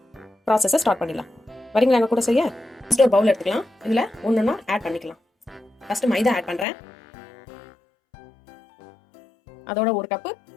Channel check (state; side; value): drops out; right; at 6.7 s